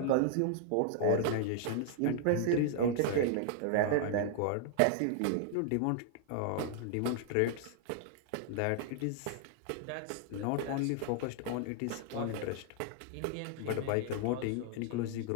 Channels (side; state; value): both; different; correlation 0.00